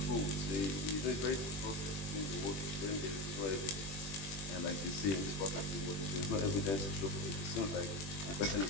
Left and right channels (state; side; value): late; right; 21 ms